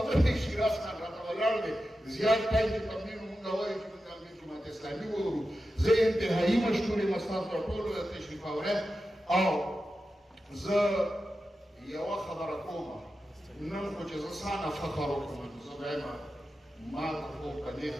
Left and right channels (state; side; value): normal; both; correlation 0.91